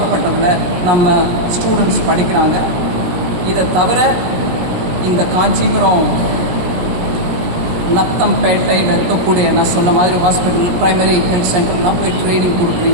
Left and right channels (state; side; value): late; left; 17 ms